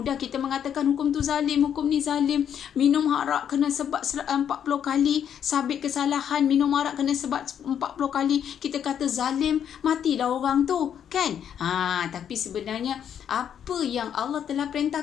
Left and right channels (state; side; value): quieter; right; 8.9 dB